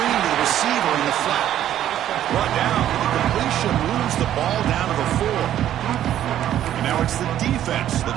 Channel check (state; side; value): quieter; left; 11.6 dB